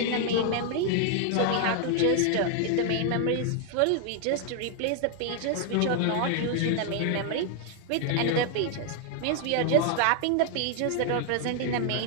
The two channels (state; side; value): different; both; correlation 0.00